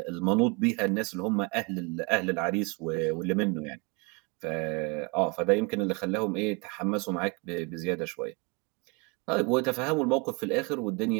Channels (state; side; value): quieter; left; 29.4 dB